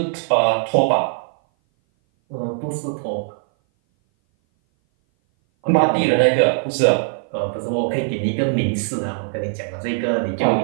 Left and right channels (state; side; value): silent; left; 58 dB below the other